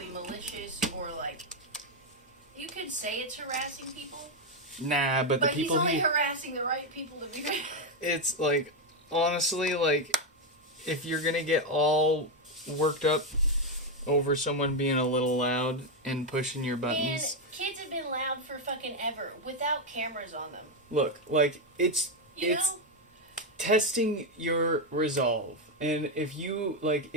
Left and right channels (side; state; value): both; normal; correlation 0.05